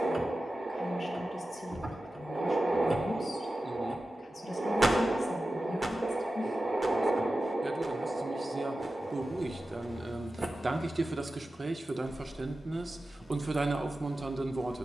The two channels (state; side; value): normal; both; correlation 0.94